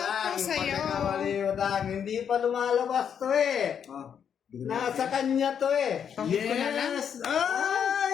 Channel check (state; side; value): quieter; right; 8.0 dB